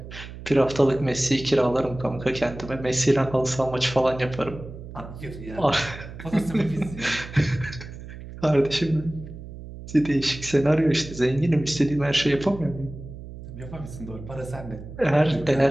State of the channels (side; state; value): right; noise; hum, 13 dB below the sound